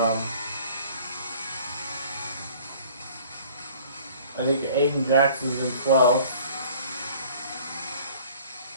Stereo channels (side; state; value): both; inverted; correlation -0.51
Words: I think Aiden Jackson's in 12th.